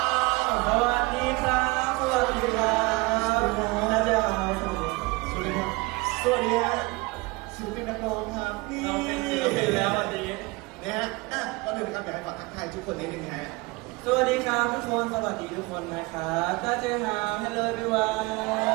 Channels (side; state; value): left; quieter; 24.4 dB